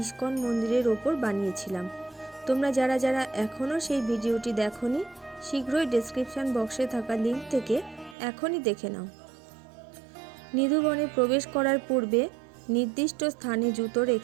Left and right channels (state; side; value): drops out; left; at 8.2 s